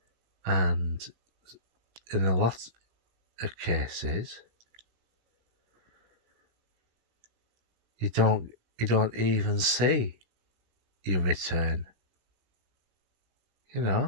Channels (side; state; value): left; late; 17 ms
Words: And in a lot of cases, you don't even see your return. You